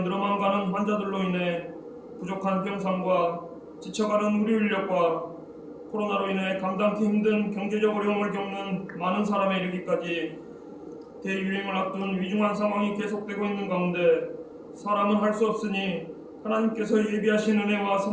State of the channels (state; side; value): identical; both; correlation 1.00